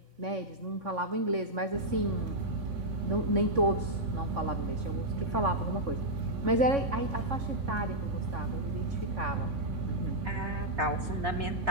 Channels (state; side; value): late; left; 3.5 ms